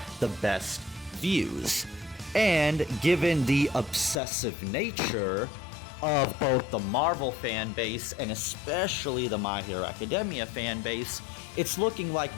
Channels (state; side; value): drops out; right; at 4.2 s